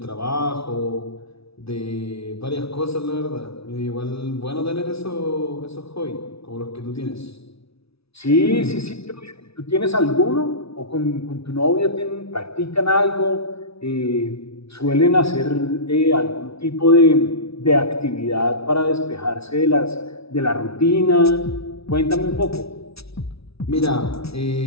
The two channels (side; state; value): right; late; 0.77 ms